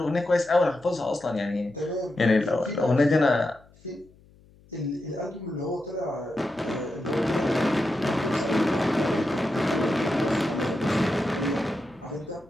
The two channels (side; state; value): left; noise; hum, 28 dB below the sound